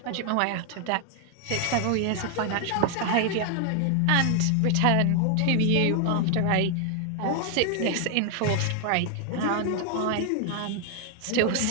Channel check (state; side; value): different; both; correlation 0.00